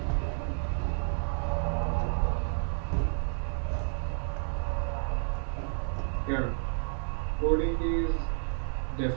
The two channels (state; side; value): silent; left; digital silence